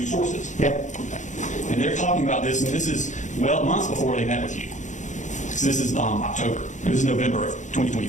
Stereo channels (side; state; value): right; late; 0.35 ms